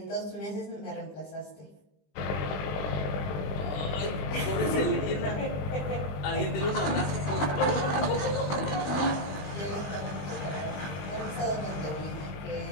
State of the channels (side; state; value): right; late; 20 ms